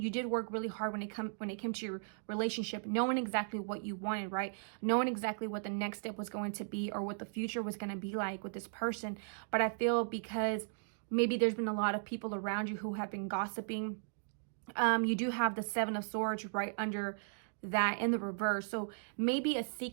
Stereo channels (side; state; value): left; silent; digital silence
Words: did work really hard when it came to your relationship, knowing exactly what you wanted, right? Knowing exactly what the next step was going to be or what the future was going to be like with this person. But I feel because maybe there's been a lot of people around you who have been gossiping. You do have the Seven of Swords right under that in the reverse, so maybe a